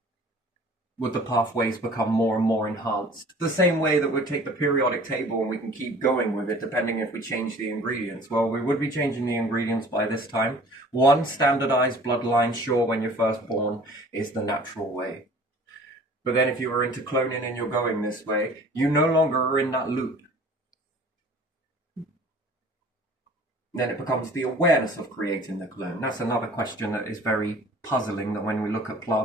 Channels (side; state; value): both; normal; correlation 0.48